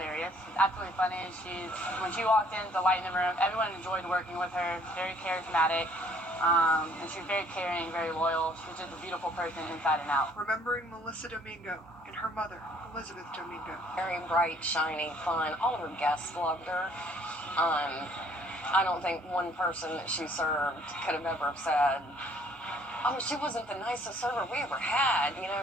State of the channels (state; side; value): normal; both; correlation 0.60